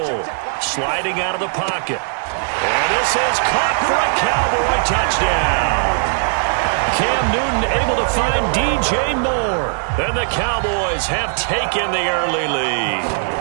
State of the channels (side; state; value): left; silent; digital silence